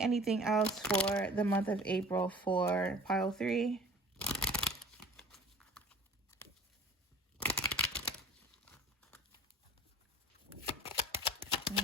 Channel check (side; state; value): both; normal; correlation 0.44